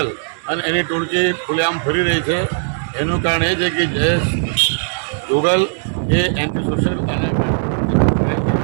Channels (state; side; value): silent; left; digital silence